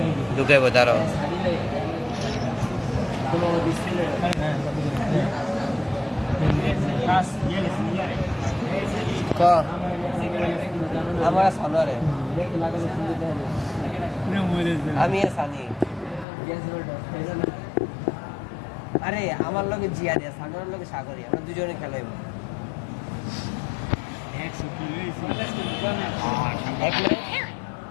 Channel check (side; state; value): right; drops out; at 16.2 s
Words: ঢুকাইব তারও ক আমার সানোয়ারে আমি সানি আরে আমার লগে জিয়া দিয়া সানোয়ারের লগে সাগরি আমরা দুজনে খেলাইব এক মিনিট